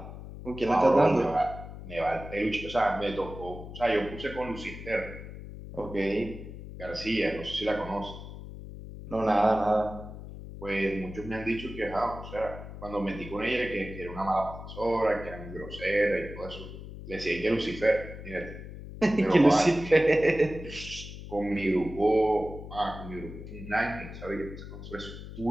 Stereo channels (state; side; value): noise; left; hum, 12 dB below the sound